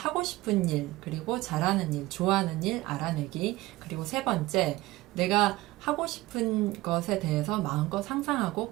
싶은 일, 그리고 잘하는 일, 좋아하는 일 알아내기. 그리고 세 번째, 내가 하고 싶은 것에 대해서 마음껏 상상하고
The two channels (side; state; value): left; quieter; 18.9 dB